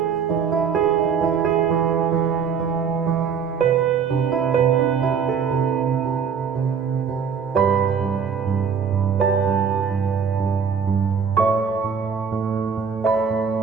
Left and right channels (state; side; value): quieter; left; 6.5 dB